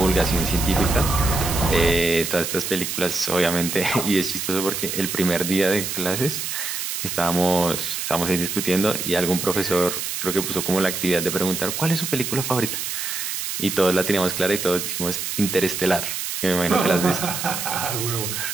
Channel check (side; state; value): right; noise; hiss, 4 dB below the sound